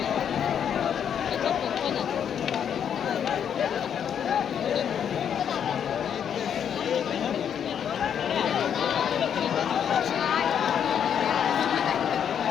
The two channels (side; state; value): right; quieter; 8.5 dB